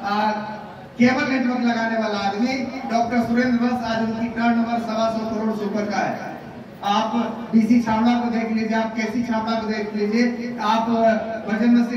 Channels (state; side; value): identical; both; correlation 1.00